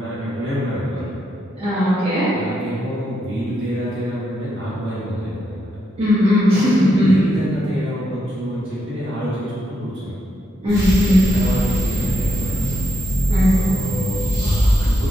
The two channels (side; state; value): both; normal; correlation 0.81